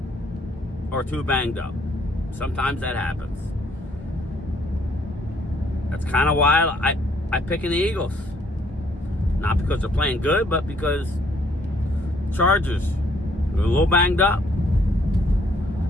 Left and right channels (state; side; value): normal; both; correlation 0.66